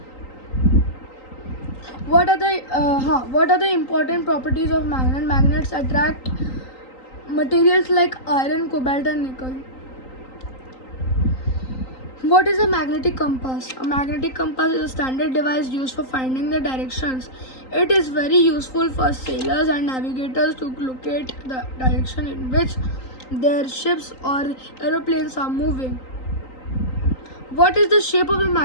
What are the important properties of magnet? Magnets attract materials like iron, cobalt and nickel. What is a magnetic compass? A magnetic compass is a standard device used for finding the directions. It is very useful for sailors and navigators to locate the direction in which their ships or aeroplanes are moving. What is the shape of a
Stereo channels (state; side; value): late; right; 3.9 ms